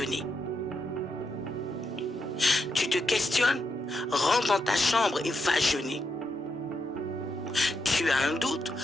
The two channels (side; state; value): both; normal; correlation 0.82